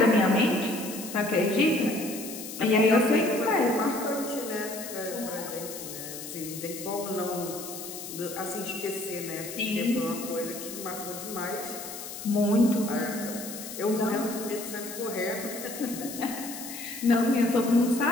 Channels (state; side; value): noise; left; hiss, 10 dB below the sound